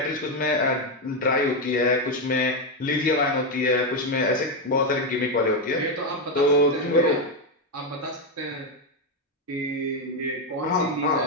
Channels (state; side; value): normal; both; correlation 0.06